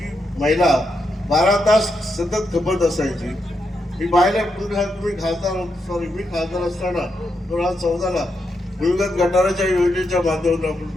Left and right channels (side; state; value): both; normal; correlation 0.83